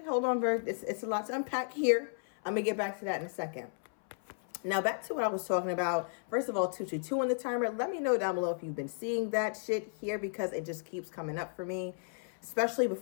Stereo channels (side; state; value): right; silent; 55 dB below the other